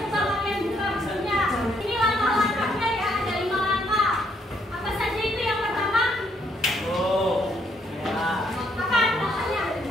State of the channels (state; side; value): normal; both; correlation 0.71